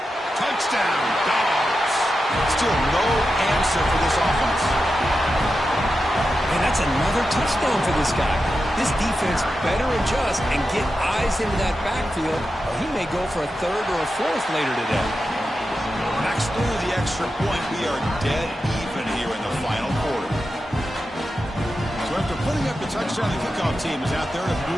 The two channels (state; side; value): normal; both; correlation 0.90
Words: Touchdown, Dogs. Still no answer for this offense. And that's another touchdown for this guy. This defense better adjust and get eyes into that backfield, or he may go for a third or a fourth later today. Max through the extra point. We are dead even here in the final quarter. So after putting up the touchdown, the kickoff team is out there to